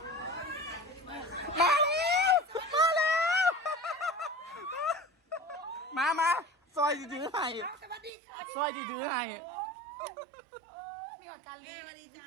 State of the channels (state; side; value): drops out; left; at 8.1 s